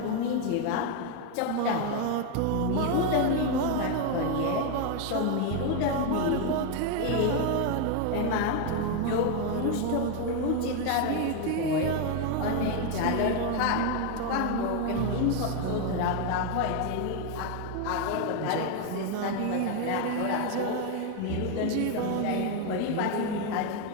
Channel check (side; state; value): both; different; correlation 0.01